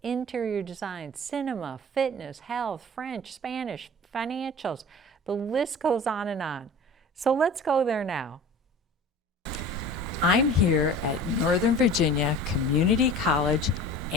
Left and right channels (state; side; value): normal; both; correlation 0.39